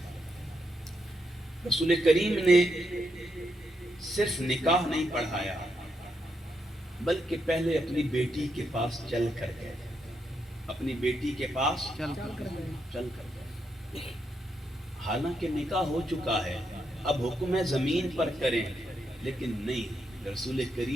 رسول کریم نے صرف نکاح نہیں پڑھایا بلکہ پہلے اپنی بیٹی کے پاس چل کر گئے، اپنی بیٹی کے پاس چل کر گئے، حالانکہ نکاح ہو چکا ہے، اب حکم ہے زمین پر کریں، لیکن نہیں، رسول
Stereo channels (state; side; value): normal; both; correlation 0.81